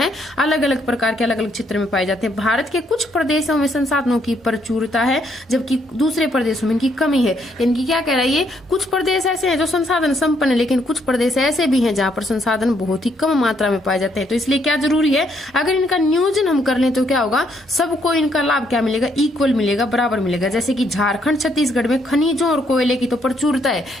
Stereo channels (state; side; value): normal; both; correlation 0.72